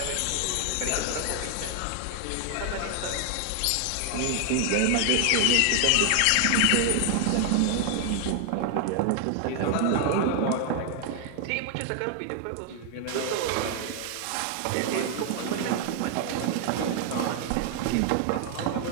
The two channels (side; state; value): both; different; correlation 0.00